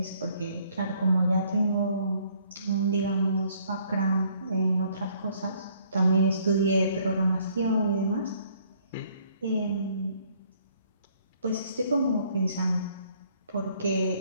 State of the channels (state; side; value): inverted; both; correlation -0.63